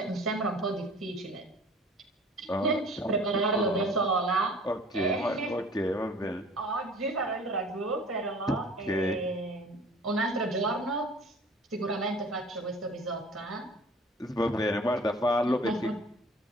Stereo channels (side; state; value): both; normal; correlation 0.47